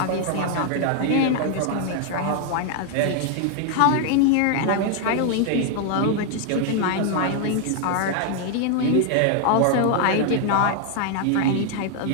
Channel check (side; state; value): both; different; correlation 0.00